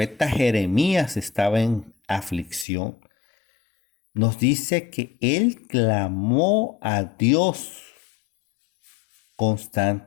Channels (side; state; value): right; drops out; at 2.7 s